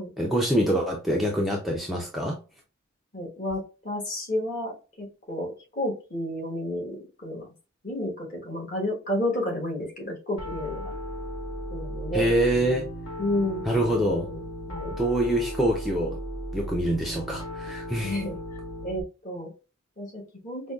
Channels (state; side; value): normal; both; correlation 0.57